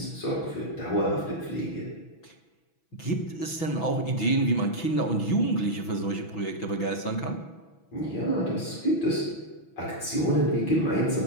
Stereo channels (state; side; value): late; right; 6.1 ms